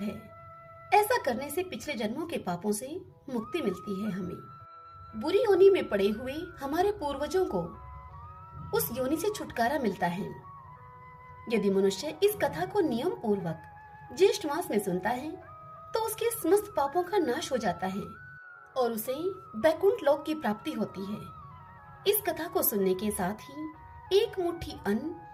है। ऐसा करने से पिछले जन्मों के पापों से मुक्ति मिलती है। हमें बुरी योनि में पड़े हुए हमारे पूर्वजों को उस योनि से छुटकारा मिलता है। यदि मनुष्य इस कथा को नियम पूर्वक ज्येष्ठ मास में सुनता है तो उसके समस्त पापों का नाश हो जाता है और उसे बैकुंठ लोक की प्राप्ति होती है। इस कथा को सुनने के साथ ही एक मुट्ठी अन्न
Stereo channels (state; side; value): identical; both; correlation 1.00